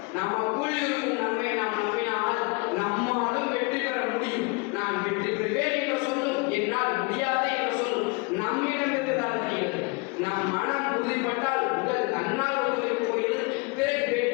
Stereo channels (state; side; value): quieter; right; 28.6 dB